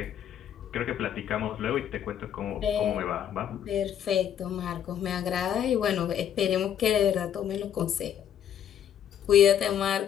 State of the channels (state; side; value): quieter; right; 9.6 dB